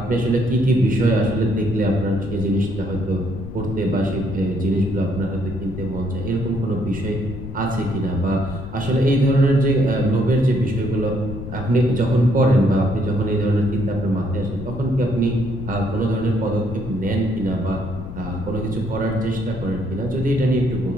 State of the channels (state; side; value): noise; left; rumble, 10 dB below the sound